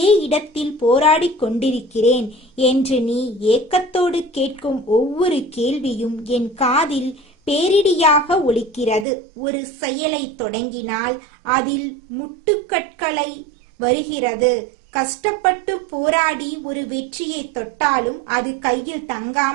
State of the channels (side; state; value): left; drops out; at 9.1 s